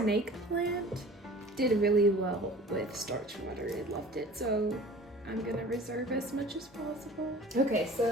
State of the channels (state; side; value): normal; both; correlation 0.44